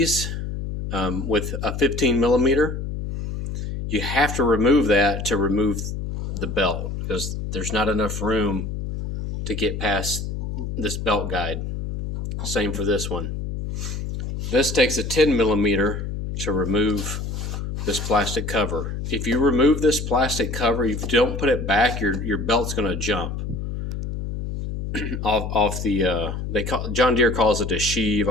with a 15 millimeter. You have to remove that to remove the belt, because there's not enough room to get past this belt guide. Same for this one. This takes a 10 millimeter to remove this plastic cover. If you remove this plastic cover, if you don't put it back, your belt's going to jump off the John Deere calls it a sheave,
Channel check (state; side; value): noise; left; hum, 5 dB below the sound